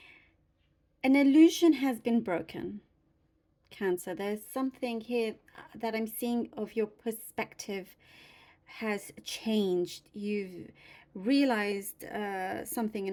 illusion has been broken, Cancer. There's something here that I'm seeing of your perspective has changed. You've realized something in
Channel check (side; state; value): both; identical; correlation 1.00